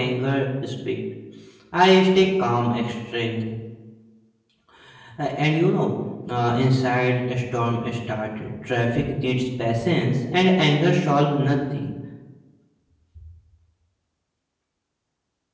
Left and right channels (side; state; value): both; identical; correlation 1.00